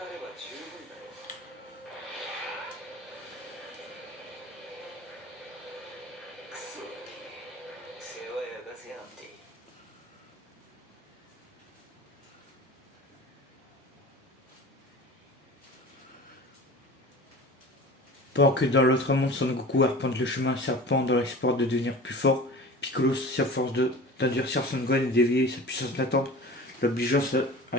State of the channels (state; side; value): normal; both; correlation 0.37